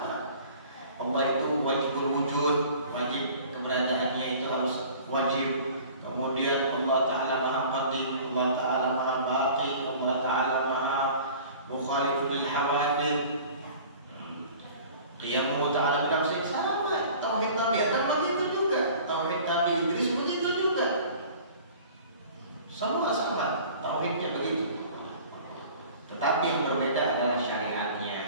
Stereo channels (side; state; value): both; inverted; correlation -0.46